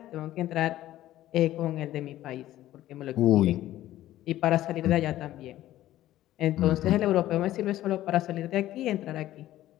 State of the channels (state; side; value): quieter; right; 14.2 dB